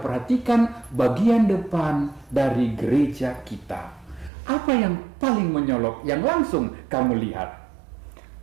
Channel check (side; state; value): left; drops out; at 4.3 s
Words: bagian depan dari gereja kita. Apa yang paling menyolok yang langsung kamu lihat?